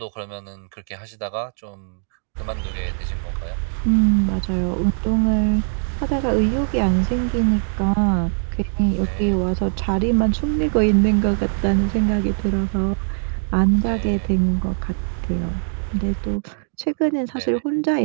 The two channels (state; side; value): silent; left; digital silence